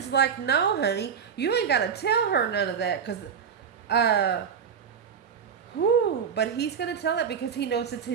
like, no, honey, you ain't got to tell her none of that. But he's going to tell it because he knows it's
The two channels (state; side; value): quieter; left; 7.2 dB